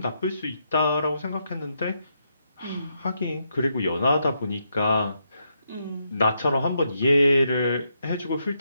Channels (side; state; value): both; inverted; correlation -0.80